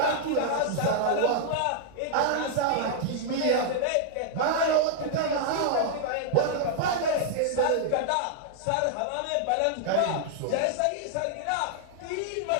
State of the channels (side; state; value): both; different; correlation -0.01